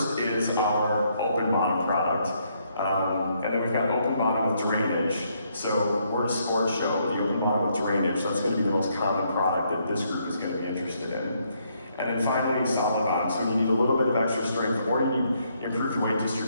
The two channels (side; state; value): both; inverted; correlation -0.73